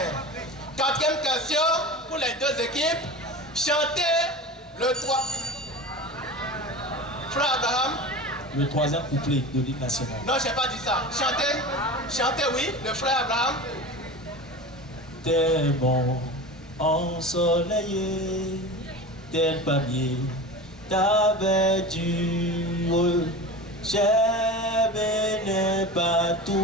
Quatrième question pour les deux équipes. Chantez le 3. Frère Abraham. Le troisième couplet de l'hymne national. Non, je n'ai pas dit ça. Chantez, oui, le frère Abraham. Tel bon ensoleillé, tel palmier t'avais dur. J'aime les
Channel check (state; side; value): normal; both; correlation 0.31